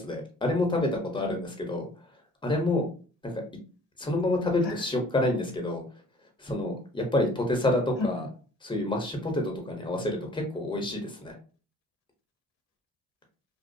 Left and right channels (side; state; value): both; normal; correlation 0.52